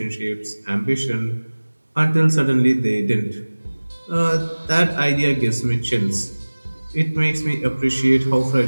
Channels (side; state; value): both; inverted; correlation -1.00